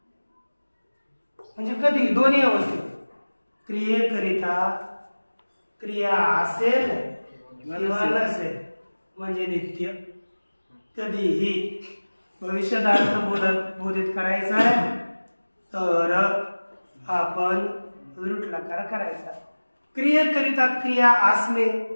म्हणजे कधी दोन्ही अवस्थेत क्रियेकरिता क्रिया असेल किंवा नसेल म्हणजे नित्य. कधीही भविष्यात बोधित करायचा आहे तर आपण लृट लकार करायचा. क्रियेकरिता क्रिया असणे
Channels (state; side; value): inverted; both; correlation -1.00